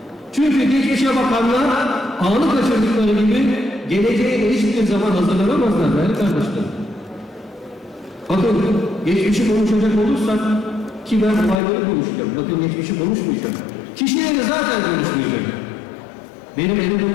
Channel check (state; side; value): drops out; right; at 11.6 s